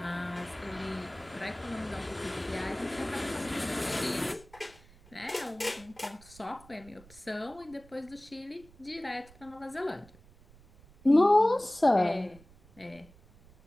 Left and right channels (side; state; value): right; noise; rumble, 25 dB below the sound